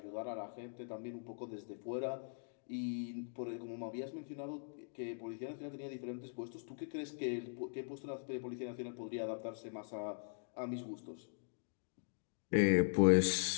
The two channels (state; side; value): silent; right; digital silence